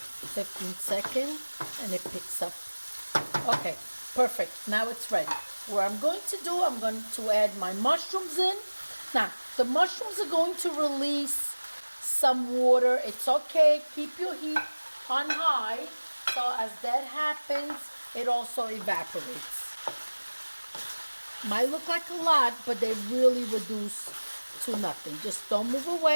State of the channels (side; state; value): both; inverted; correlation -1.00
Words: seconds and it picks up. Okay, perfect. Now it's ready. What I'm going to do, I'm going to add my mushrooms in. Now, the mushrooms are going to release some water. It's okay. Keep your heat on high. So as that happens, it also evaporates. Might look like a lot, but they really reduce to nothing. Just don't move